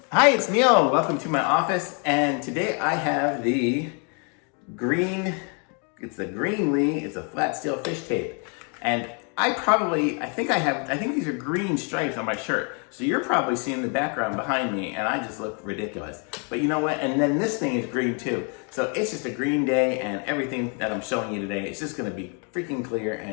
Hi, it's Neil. Welcome to my office, and today I have the Greenlee. It's a flat steel fish tape, and I think these are green stripes on my shirt. So you're probably seeing the background behind me, and I just look ridiculous. But you know what? And then this thing is green too. So it's just a green day, and everything that I'm showing you today is just going to be freaking clear.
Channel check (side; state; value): right; quieter; 37.7 dB